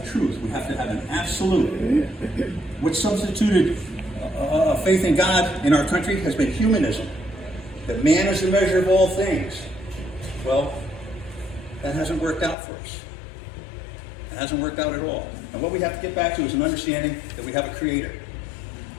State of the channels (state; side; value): drops out; right; at 12.6 s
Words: truth. We have to have an absolute. What substituted faith in God in our country has been humanism. That man is the measure of all things. Well, that hasn't worked out for us. It hasn't worked out at all. And what we have to get back to is an understanding that we have a creator.